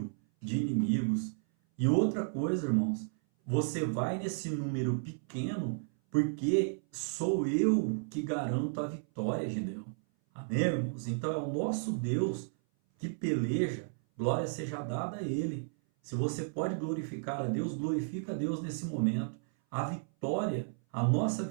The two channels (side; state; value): left; silent; 56 dB below the other